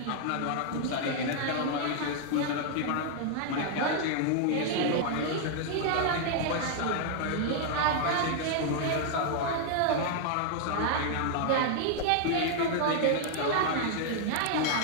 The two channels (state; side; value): different; both; correlation 0.00